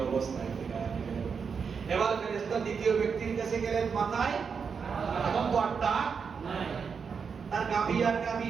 অবস্থায় ফিরিয়ে দিবেন। এবার ফেরেশতা দ্বিতীয় ব্যক্তির কাছে গেলেন, মাথায় এখন তো আটটা নাই, তার গাভী আর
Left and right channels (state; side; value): quieter; left; 6.0 dB